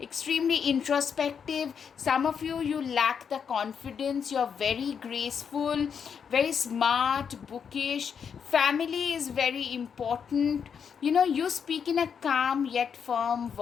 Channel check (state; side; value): quieter; right; 7.0 dB